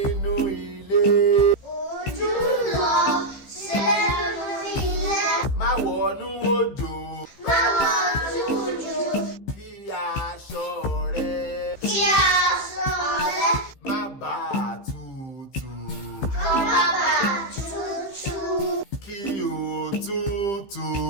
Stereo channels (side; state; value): right; late; 15 ms